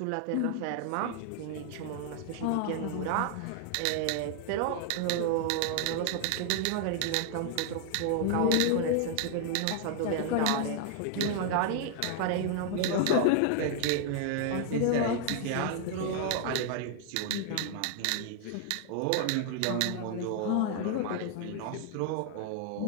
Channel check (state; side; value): different; both; correlation 0.00